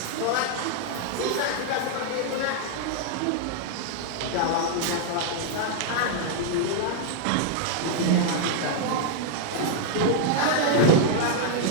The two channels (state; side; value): different; both; correlation 0.00